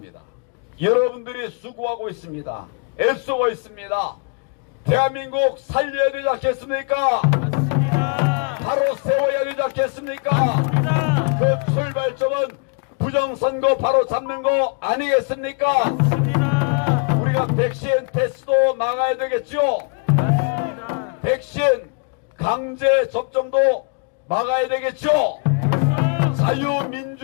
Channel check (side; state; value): right; quieter; 37.1 dB